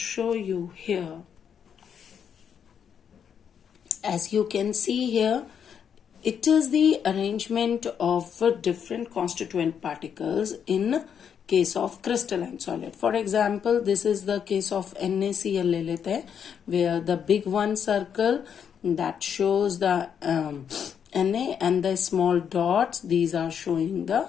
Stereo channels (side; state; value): right; quieter; 7.8 dB